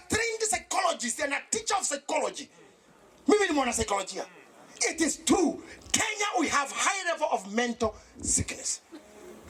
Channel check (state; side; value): identical; both; correlation 1.00